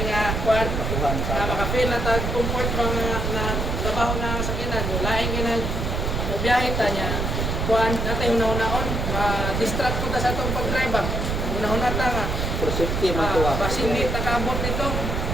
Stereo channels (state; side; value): noise; right; rumble, 1 dB below the sound